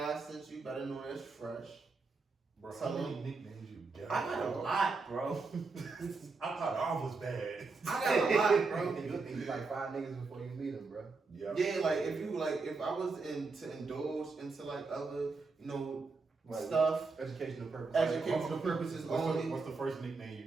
sent you. Better know that's fresh. Bro, Tell how many him. nicknames you got? I got a lot, bro. I thought all was bad. I got a lot, bro. You think you like 5 niggas before you meet them, bro. Yeah. Yeah, if I was to indulge into other, Like, stuff, Educational purposes. educational purposes only. What's the first nickname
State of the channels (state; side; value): quieter; left; 4.1 dB